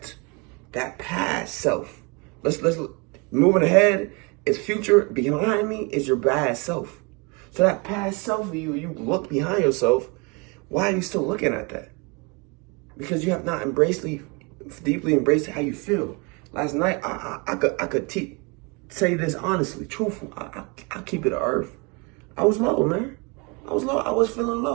that past self. Let's moving ahead. It's future. Behind me is your bad self. So that past self of you look behind yourself. Why are you still looking at that? Because you have not deeply embraced how you feel. Last night, I could say this honestly, truthful. I keep it to earth. I was low, man. I was low. I was feeling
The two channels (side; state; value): left; quieter; 29.6 dB